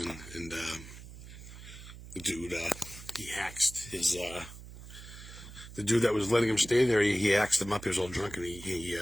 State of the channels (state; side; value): noise; right; hum, 15 dB below the sound